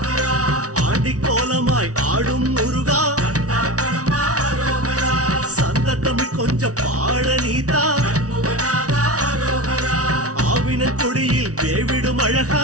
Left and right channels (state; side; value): late; left; 0.67 ms